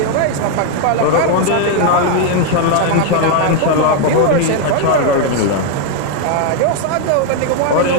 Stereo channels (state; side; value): different; both; correlation 0.00